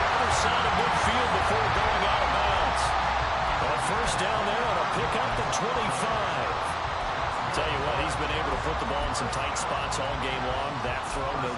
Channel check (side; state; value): both; identical; correlation 1.00